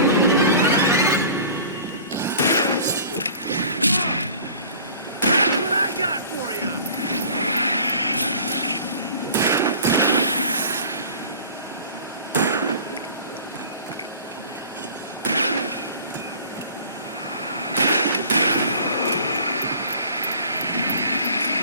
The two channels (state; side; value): inverted; both; correlation -0.45